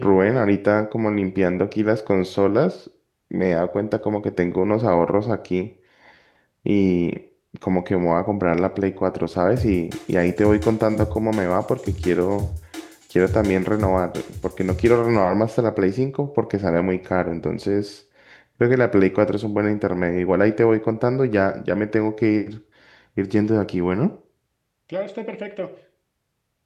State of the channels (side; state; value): both; identical; correlation 1.00